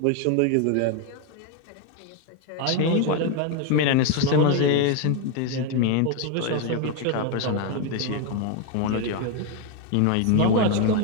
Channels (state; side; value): different; both; correlation 0.01